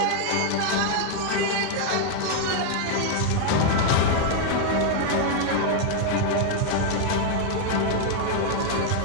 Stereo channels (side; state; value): both; different; correlation 0.00